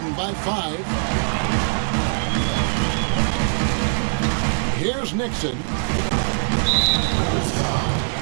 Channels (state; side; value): silent; left; digital silence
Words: by 5. Here's Nixon.